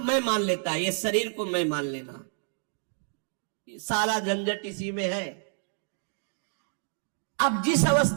मान लेता है। ये शरीर को मैं मान लेना, सारा झंझट इसी में है। अब जिस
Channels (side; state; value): left; silent; 59 dB below the other